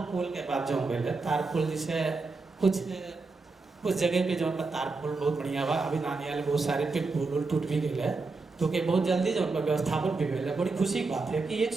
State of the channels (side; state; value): left; quieter; 3.9 dB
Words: पोल के बाद जौन गए तार पोल जैसे कुछ जगह पे जौन बा तार पोल बहुत बढ़िया बा, अभी नानियाल बहुत सारे पे पोल टूट भी गए है, तो के बहुत जल्दी जौन बा व्यवस्थापन भी गए है। बड़ी खुशी की बात है कि 1